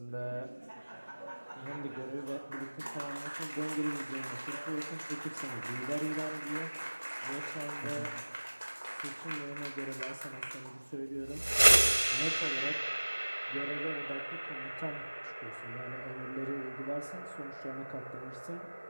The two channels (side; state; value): both; inverted; correlation -1.00